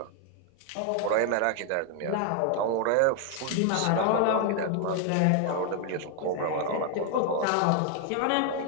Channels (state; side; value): different; both; correlation 0.00